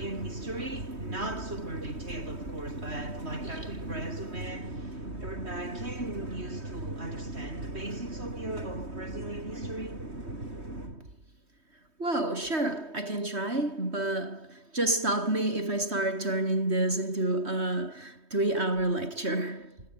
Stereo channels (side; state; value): left; late; 3.2 ms